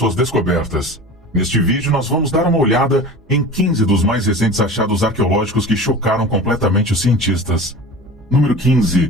descobertas. Neste vídeo nós vamos dar uma olhada em 15 dos mais recentes achados arqueológicos que chocaram completamente os cientistas. Número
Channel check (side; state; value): both; normal; correlation 0.36